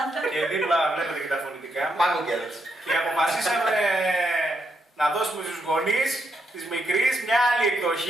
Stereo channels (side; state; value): both; normal; correlation 0.80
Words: Και δίπλα βλέπετε και τα φωνητικά μου. Και αποφασίσαμε να δώσουμε στους γονείς της μικρής μια άλλη